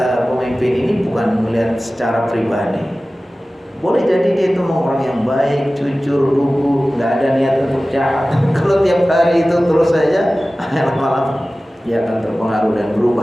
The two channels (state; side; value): normal; both; correlation 0.97